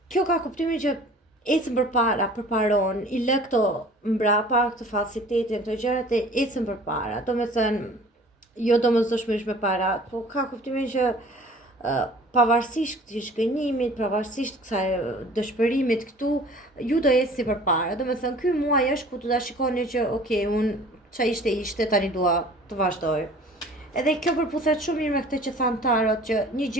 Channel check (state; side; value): normal; both; correlation 0.48